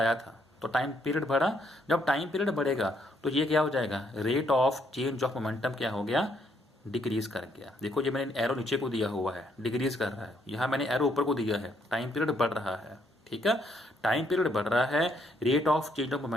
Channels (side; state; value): both; normal; correlation 0.72